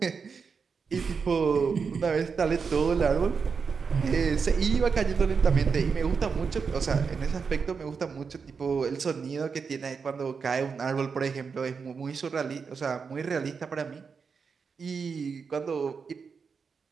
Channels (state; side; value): quieter; left; 5.6 dB